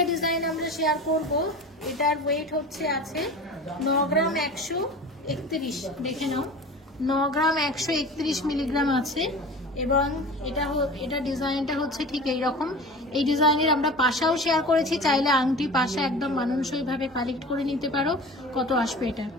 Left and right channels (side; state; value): both; normal; correlation 0.36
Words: ডিজাইন আমরা শেয়ার করব। এটার ওয়েট হচ্ছে আছে 9 গ্রাম 131। দেখে নাও, 9 গ্রাম 131 মিলিগ্রাম আছে, এবং এটা ডিজাইনটা হচ্ছে ঠিক এইরকম। এই ডিজাইনের আমরা পাশাও শেয়ার করেছি, চাইলে আংটি পাশা একদম মানানসইভাবে কালেক্ট করে নিতে পারো। কত আসবে এটা?